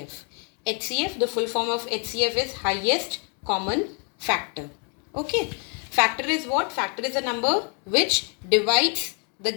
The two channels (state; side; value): quieter; right; 38.2 dB